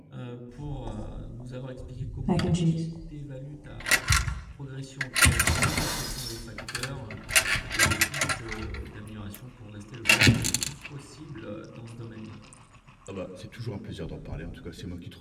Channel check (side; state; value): both; identical; correlation 1.00